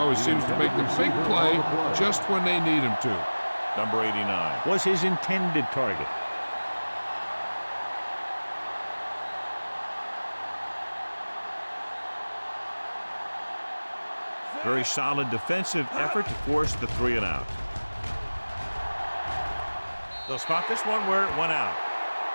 seems to make the big play just when they need him to. Number 89 was his intended target. Very solid defensive effort to force the 3 and out. They'll spot this one where it went out.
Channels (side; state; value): both; inverted; correlation -1.00